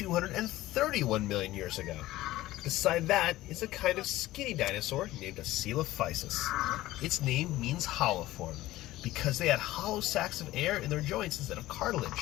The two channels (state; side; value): quieter; right; 16.4 dB